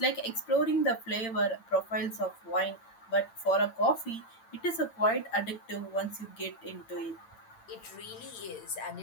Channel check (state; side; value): late; right; 8.8 ms